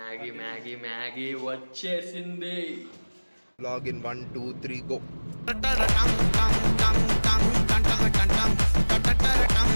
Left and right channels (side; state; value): both; inverted; correlation -1.00